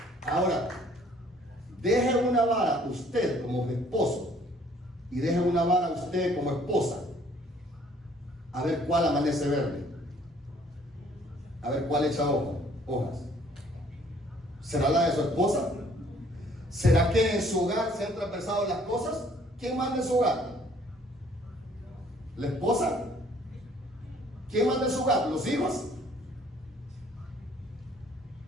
Ahora, deje una vara usted como esposo y deje una vara usted como esposa, a ver cuál amanece verde, a ver cuál echa hojas. ¿Será la de su esposa? ¿Será que en su hogar se han transversado las cosas? ¿Quién manda en su hogar? ¿La esposa? ¿Quién manda en su hogar? ¿Los hijos?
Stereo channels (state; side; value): normal; both; correlation 0.60